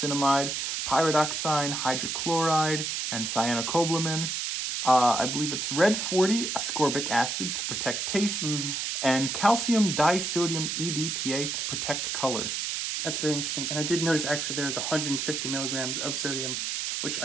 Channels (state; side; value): noise; right; hiss, 2 dB below the sound